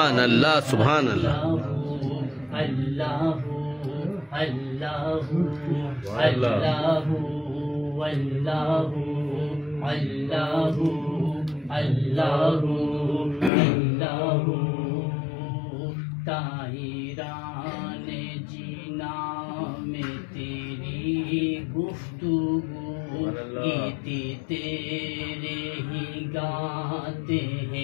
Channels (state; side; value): drops out; right; at 13.5 s